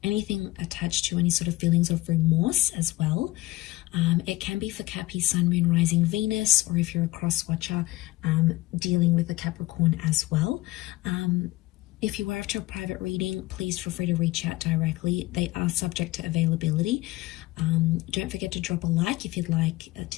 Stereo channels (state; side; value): quieter; right; 19.2 dB